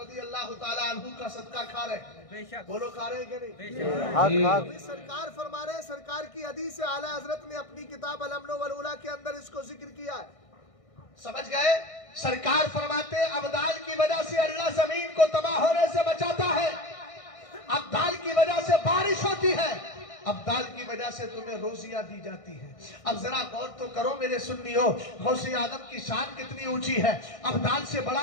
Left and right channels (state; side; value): late; right; 1.6 ms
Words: रज़ी अल्लाह ताला अन्हु का सदका खा रहे, बोलो खा रहे कि नहीं? अभी सरकार फरमा रहे, सरकार की हदीस से आला हजरत ने अपनी किताब अल-अम्न वल उला के अंदर इसको जिक्र किया है। समझ गए? सरकार फरमाते अब्दाल की वजह से अल्लाह जमीन को तबाह होने से बचाता है, अब्दाल की वजह से बारिश होती है, अब्दाल की वजह से तुम्हें रोजियां दी जाती है। अब जरा गौर तो करो मेरे सुन्नियों, गौसे आदम की शान कितनी ऊंची है। अब्दाल से बड़ा